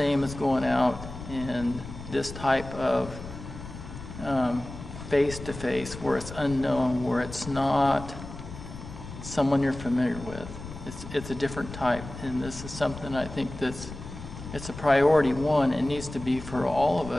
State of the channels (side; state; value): left; noise; rumble, 12 dB below the sound